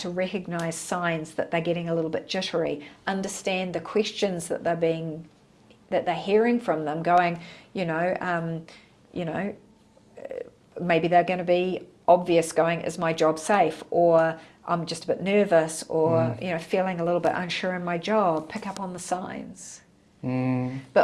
recognise signs that they're getting a little bit jittery, understand the questions that they're hearing from them, going, maybe they're going to be obvious, going, is my job safe? Or I'm just a bit nervous, or feeling a little bit unsure in my job. Pick up on the signs.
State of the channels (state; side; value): identical; both; correlation 1.00